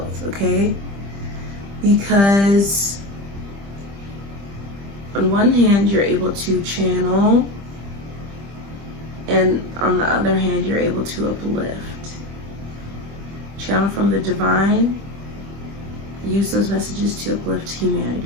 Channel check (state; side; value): late; left; 25 ms